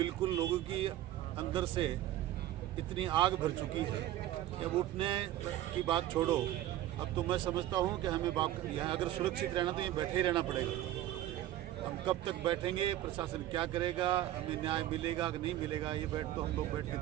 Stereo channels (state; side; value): quieter; left; 13.7 dB